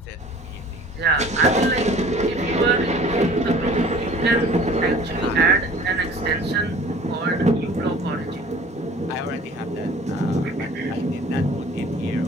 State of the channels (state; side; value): normal; both; correlation 0.49